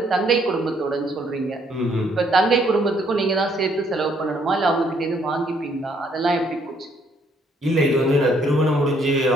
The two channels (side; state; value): both; normal; correlation 0.67